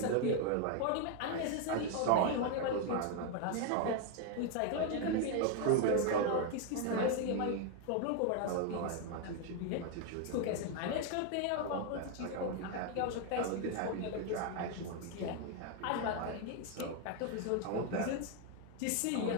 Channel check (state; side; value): different; both; correlation 0.01